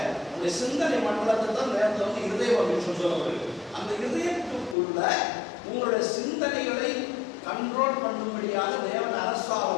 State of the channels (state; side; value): drops out; right; at 4.8 s